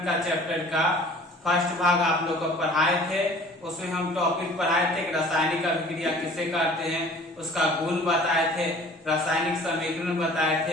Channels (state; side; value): normal; both; correlation 0.49